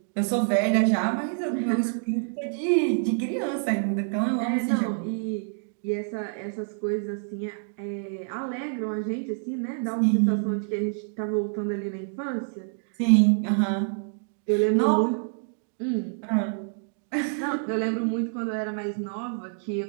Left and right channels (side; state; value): left; silent; digital silence